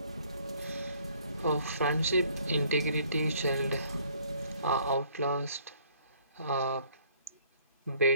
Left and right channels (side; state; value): both; inverted; correlation -0.61